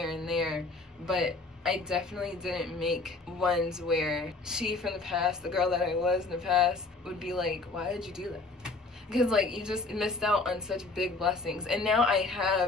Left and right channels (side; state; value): right; quieter; 3.6 dB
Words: and there, but I definitely didn't make ones where she from the past, the girl that I was in the past, would be like, why did you do that? Because like, you just missed out on such big blessings. And now I